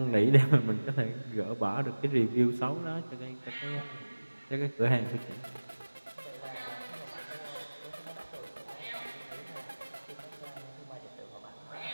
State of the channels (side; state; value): both; inverted; correlation -1.00